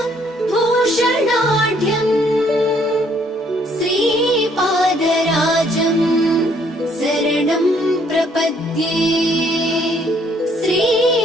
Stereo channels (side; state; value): both; normal; correlation 0.66